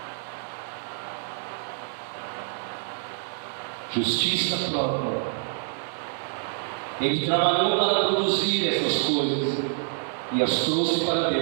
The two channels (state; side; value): silent; left; digital silence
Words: Justiça própria. Ele trabalhou para produzir essas coisas e as trouxe para